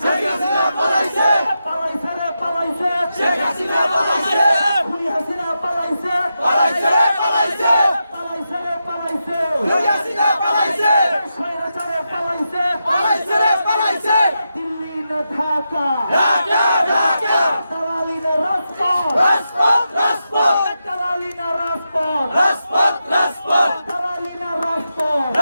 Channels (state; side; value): inverted; both; correlation -0.87